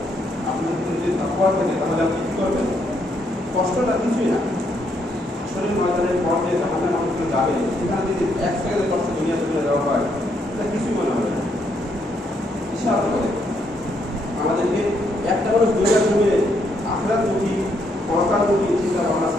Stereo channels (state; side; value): normal; both; correlation 0.74